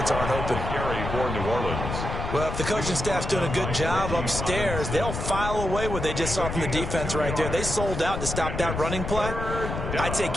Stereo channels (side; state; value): left; noise; rumble, 4 dB below the sound